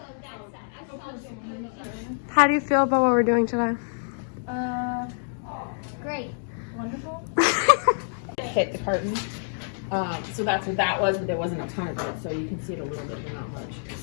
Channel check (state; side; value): silent; right; digital silence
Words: How do you feel about what we're doing today? Great. Wonderful. Hit the curtain. So that's what that was, but there wasn't a ton of it, so you can see it a little bit, but not much.